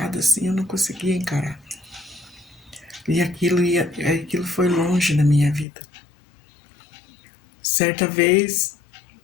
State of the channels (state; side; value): drops out; right; at 5.7 s